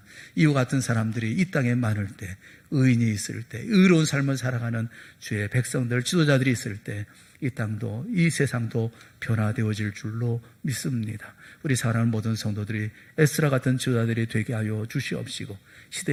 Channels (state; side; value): identical; both; correlation 1.00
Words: 이와 같은 사람들이 이 땅에 많을 때, 의인이 있을 때, 의로운 삶을 살아가는 주의 백성들, 지도자들이 있을 때 이 땅도 이 세상도 변화되어질 줄로 믿습니다. 우리 사랑하는 모든 성도들이 에스라 같은 지도자들이 되게 하여 주시옵시고,